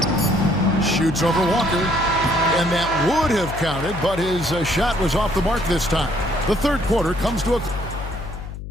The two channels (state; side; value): noise; left; hum, 10 dB below the sound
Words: Shoots over Walker. And that would have counted, but his shot was off the mark this time. The third quarter comes to a...